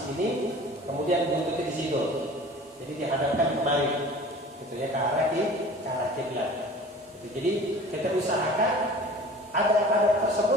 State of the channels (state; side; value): normal; both; correlation 0.43